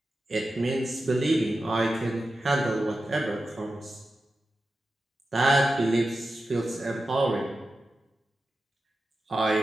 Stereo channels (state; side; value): normal; both; correlation 0.92